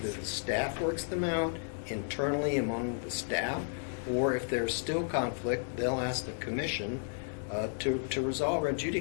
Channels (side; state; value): right; silent; digital silence